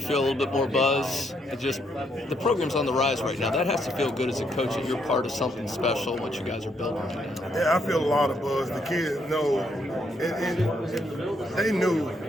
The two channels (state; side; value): normal; both; correlation 0.74